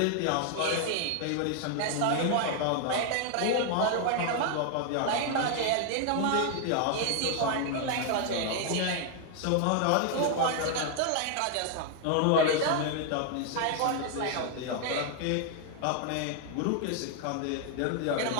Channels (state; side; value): different; both; correlation 0.00